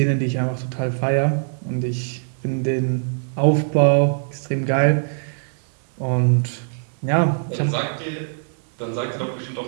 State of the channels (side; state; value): left; silent; 62 dB below the other